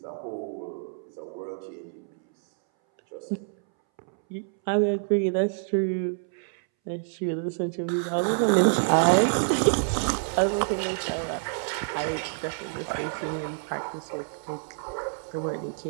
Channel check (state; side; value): silent; left; 60 dB below the other